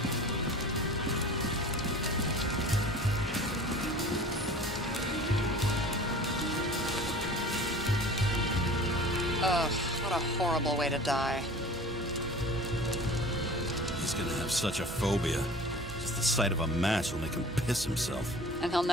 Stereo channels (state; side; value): normal; both; correlation 0.42